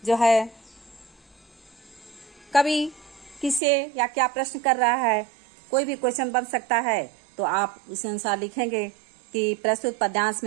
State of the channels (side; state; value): left; drops out; at 3.6 s